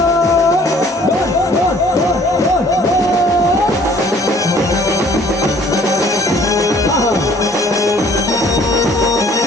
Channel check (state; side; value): normal; both; correlation 0.57